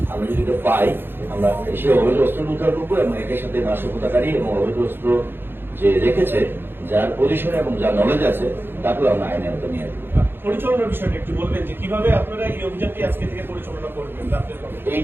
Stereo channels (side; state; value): left; late; 0.10 ms